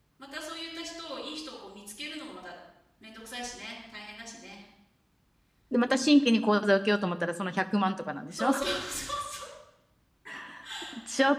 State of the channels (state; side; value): identical; both; correlation 1.00